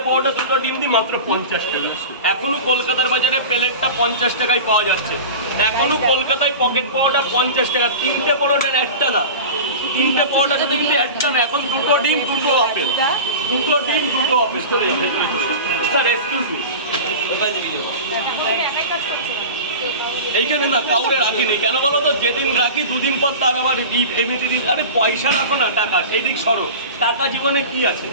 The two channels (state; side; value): inverted; both; correlation -0.32